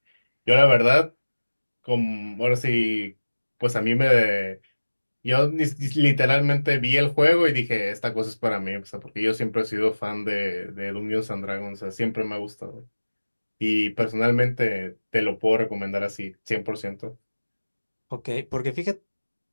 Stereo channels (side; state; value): both; inverted; correlation -1.00